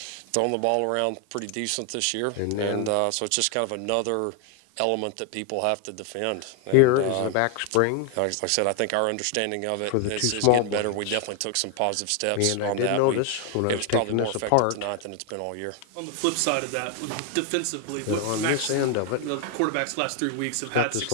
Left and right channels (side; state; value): both; different; correlation 0.01